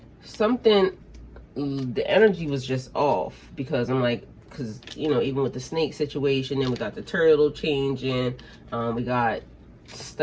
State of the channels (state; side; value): identical; both; correlation 1.00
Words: something, the energy was just off, because I'm like, because, you know, even with the snake situation, then we got the turtle changing, we got